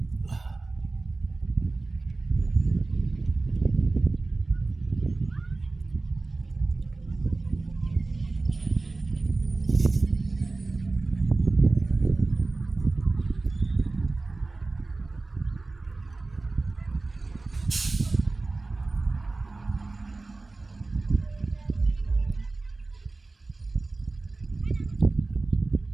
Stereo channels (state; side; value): quieter; left; 3.4 dB